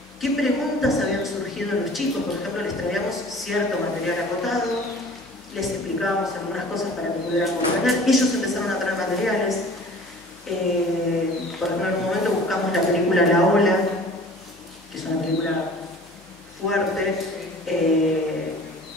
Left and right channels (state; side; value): noise; left; hum, 29 dB below the sound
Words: qué preguntas habían surgido en los chicos. Por ejemplo, les traíamos cierto material acotado, les explicábamos algunas cosas para que pudieran comprender. Ellos empezaron a traer materiales. Por ejemplo, en un momento buscamos la película La Ola, que es una película fuerte,